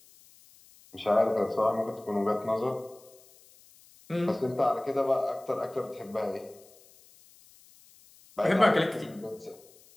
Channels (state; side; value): noise; left; hiss, 26 dB below the sound